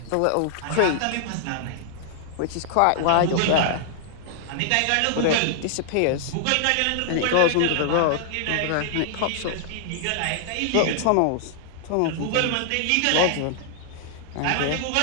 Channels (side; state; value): both; different; correlation -0.01